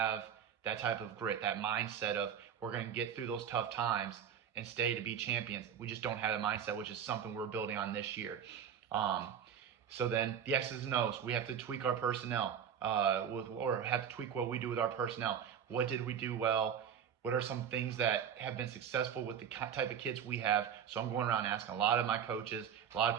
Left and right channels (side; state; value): left; quieter; 8.4 dB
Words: that type of grit, that mindset of we're going to get through those tough times and stay to be champions. We just don't have the mindset, which is something we're building on this year. So then the X's and O's, we have to tweak our personnel, or have to tweak what we do with our personnel. What did we do well? What are some things that have been successful with the type of kids we have? So I'm going around asking a lot of my coaches, a lot of